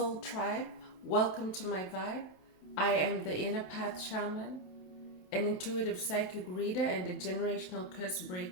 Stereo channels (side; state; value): right; late; 27 ms